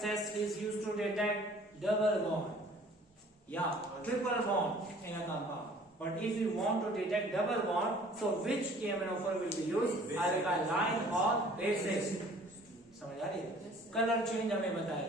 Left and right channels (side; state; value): both; normal; correlation 0.53